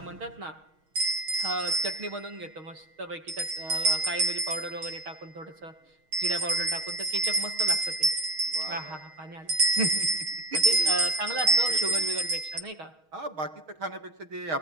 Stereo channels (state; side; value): late; left; 6.4 ms